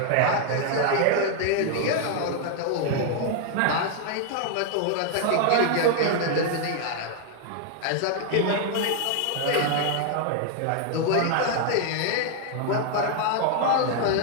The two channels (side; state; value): both; different; correlation 0.00